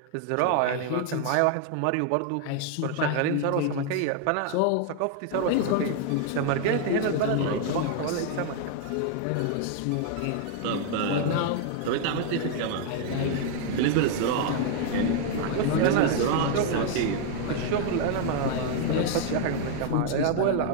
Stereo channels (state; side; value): different; both; correlation 0.00